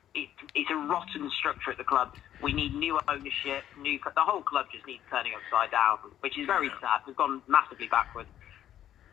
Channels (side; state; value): right; quieter; 11.3 dB